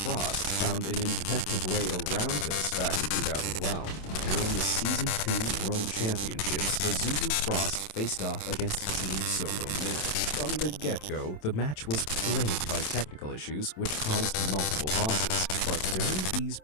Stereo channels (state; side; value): late; right; 27 ms